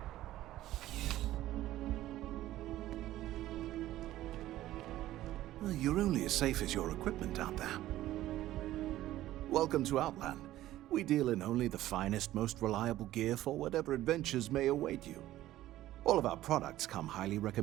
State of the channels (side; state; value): left; quieter; 14.6 dB